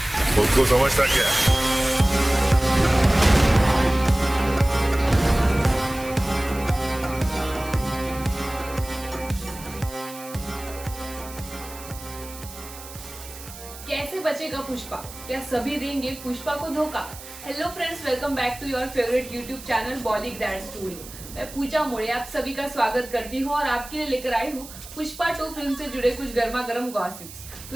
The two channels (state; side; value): noise; right; hiss, 15 dB below the sound